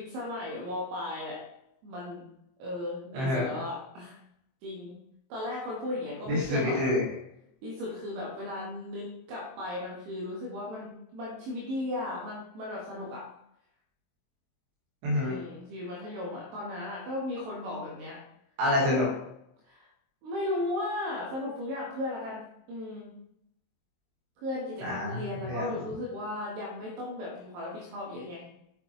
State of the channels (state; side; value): late; left; 23 ms